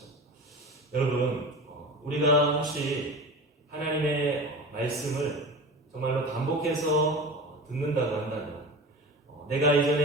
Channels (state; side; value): normal; both; correlation 0.32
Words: 여러분, 우리가 혹시 하나님의 말씀을 정말로 반복해서 듣는다고 한다면, 내가